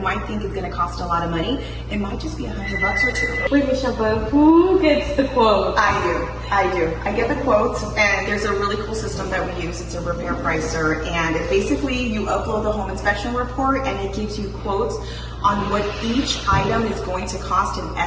think is going to cost a lot of money, it might just be $100 or $200. Wait, Michelle, but who gets the quote? I do. I get the quotes, and there's a really cool system that we use. It's a repair pricer, and it basically you upload the home inspection report, and it gives you quotes on what each item is going to cost, an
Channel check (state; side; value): identical; both; correlation 1.00